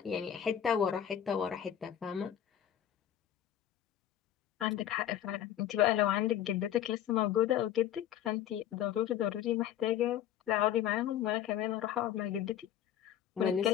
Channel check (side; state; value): right; quieter; 10.6 dB